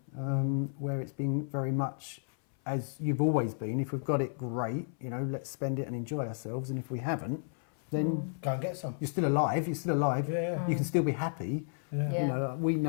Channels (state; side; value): silent; right; 56 dB below the other